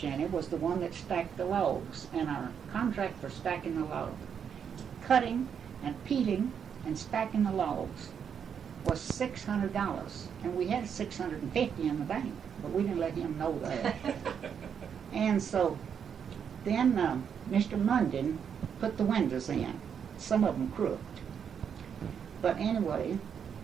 was the one that stacked the logs, and our contract for stacking the logs, cutting and peeling and stacking the logs was $600, and we had $650 in the bank, but we didn't let him know that. And so then Mr. Munden put the windows in, some of them crooked. But anyway,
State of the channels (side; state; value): left; quieter; 7.6 dB